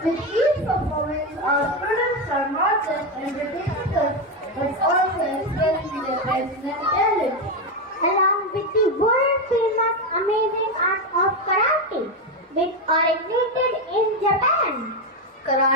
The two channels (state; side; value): normal; both; correlation 0.10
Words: With each performance, our students are not just entertaining us, but also expressing their personal talent. Along with the world famous amazing art of karate, which originated in Japan.